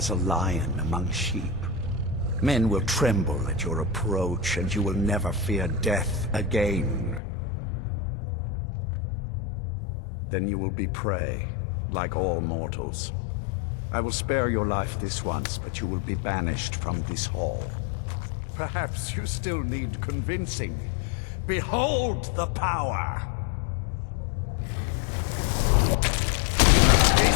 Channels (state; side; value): drops out; right; at 7.2 s